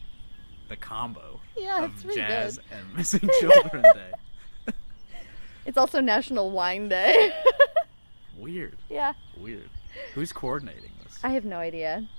the combo Yeah, of it's really jazz good. and missing children day. It's also National Wine Day. Weird. Yeah. Weird. Who's coordinating this? I have no idea.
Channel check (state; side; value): inverted; both; correlation -1.00